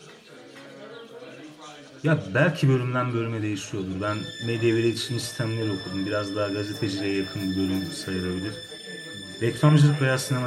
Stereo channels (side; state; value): both; identical; correlation 1.00